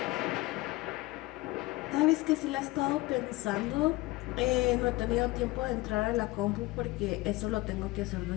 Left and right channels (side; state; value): right; quieter; 20.3 dB